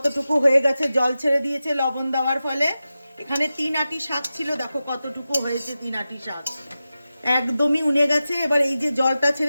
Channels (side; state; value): both; inverted; correlation -0.93